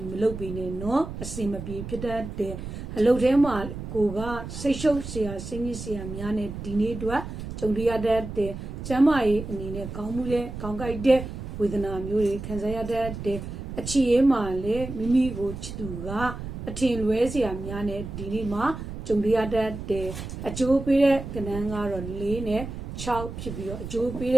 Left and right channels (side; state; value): right; noise; rumble, 8 dB below the sound